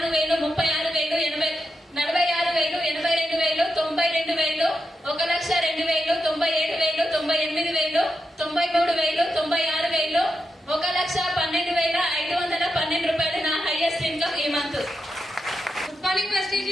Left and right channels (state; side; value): normal; both; correlation 0.87